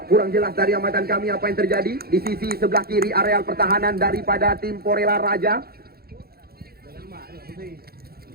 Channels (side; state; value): left; late; 0.45 ms